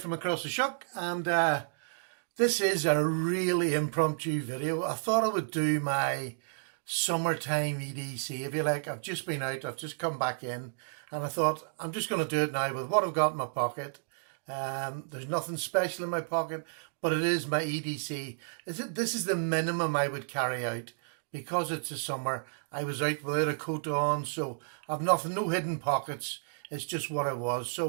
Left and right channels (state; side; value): silent; left; digital silence